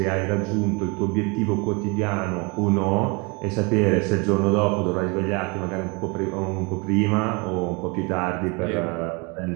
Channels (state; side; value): quieter; left; 29.8 dB